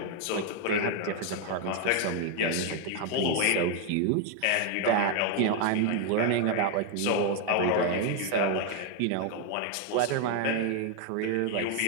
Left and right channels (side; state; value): both; different; correlation 0.01